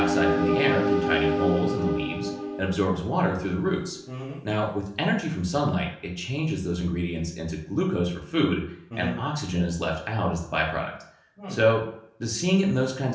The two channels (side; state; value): both; identical; correlation 1.00